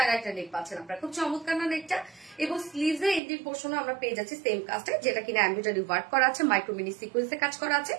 একটা নেক পাচ্ছেন আপনারা, খুব চমৎকার না নেকটা। এবং স্লিভসে এন্ডিং পোর্শনে আমরা পেয়ে যাচ্ছি সেম কাজটা, যেটা কিনা এমব্রয়ডারি ওয়ার্ক করা আছে, মাইক্রোমিনি সিকোয়েন্সে কাজ করা আছে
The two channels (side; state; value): left; drops out; at 3.2 s